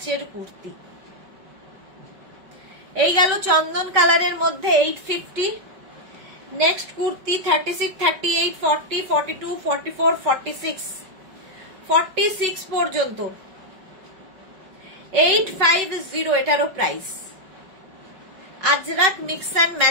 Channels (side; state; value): left; late; 5.3 ms